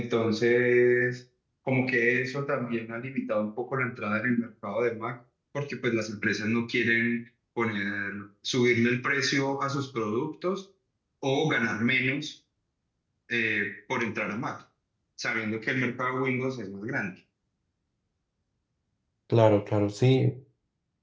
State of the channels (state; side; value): identical; both; correlation 1.00